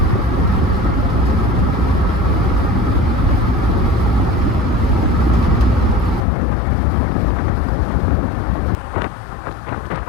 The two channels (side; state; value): right; drops out; at 6.2 s